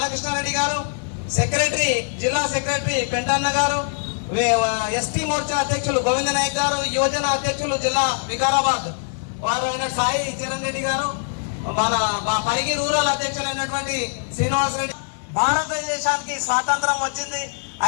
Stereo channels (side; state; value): right; silent; digital silence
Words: గారు, సెక్రటరీ జిల్లా సెక్రటరీ పెంటన్న గారు, ఎస్టీ మోర్చా అధ్యక్షులు గోవింద నాయక్ గారు, యువజన అధ్యక్షులు జిల్లా వికారాబాద్ వారు అయిన సాయి చరణ్ రెడ్డి గారు, మన పరిగి రూరల్ అధ్యక్షులైనటువంటి శ్రీనివాస్ రెడ్డి. భారతదేశానికి స్వాతంత్రం వచ్చింది.